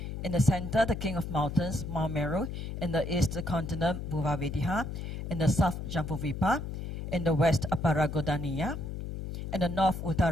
In the center, the king of mountains, Mount Meru. In the east, the continent, Bhuvavedhiha. In the south, Jambuvipa. In the west, Aparagodaniya. In the north,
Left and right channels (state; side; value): noise; left; hum, 6 dB below the sound